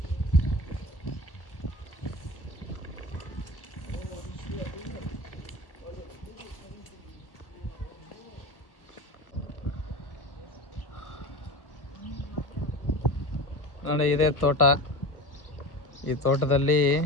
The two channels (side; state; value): right; late; 1.3 ms